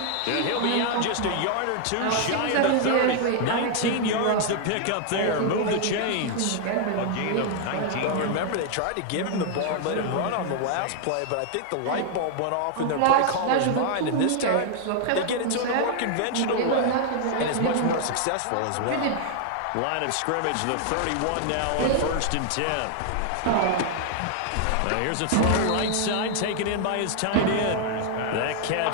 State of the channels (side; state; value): both; different; correlation 0.00